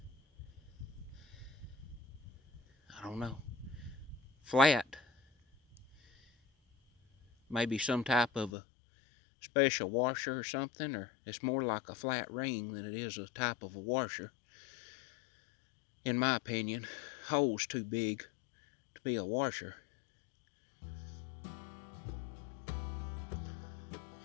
I don't know. Flat. Maybe some type of a special washer or something, or it's more like a flat ring than it is a type of a washer. In my opinion, hole's too big to be a washer.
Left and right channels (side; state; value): right; drops out; at 8.5 s